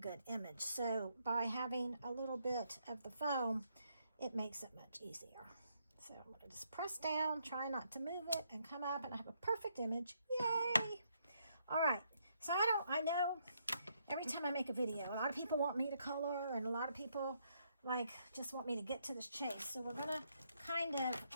image. So by having a little bit of the foam, it makes it much easier. So I'm going to just press down, try not to move it, and come up, and I have a perfect image. Yay! All right. So I know every time I make a video, a lot of people want me to color, and a lot of people just want me to get to this chase. So we're going to kind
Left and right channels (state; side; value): inverted; both; correlation -0.75